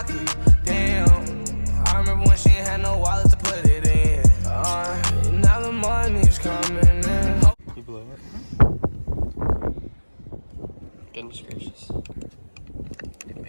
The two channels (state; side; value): inverted; both; correlation -1.00